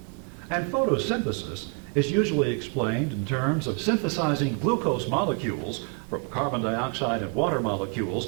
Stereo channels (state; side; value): quieter; left; 35.5 dB